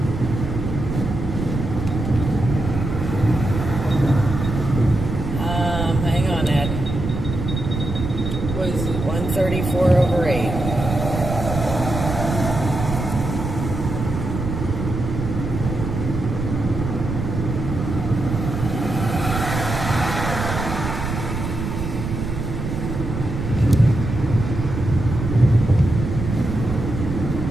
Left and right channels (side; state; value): right; noise; rumble, 4 dB below the sound